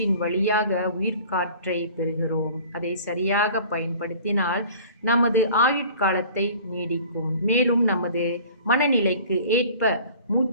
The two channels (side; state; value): both; inverted; correlation -0.46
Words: வழியாக உயிர்காற்றை பெறுகிறோம். அதை சரியாக பயன்படுத்தினால் நமது ஆயுட்காலத்தை நீடிக்கும். மேலும் நமது மனநிலைக்கு ஏற்ப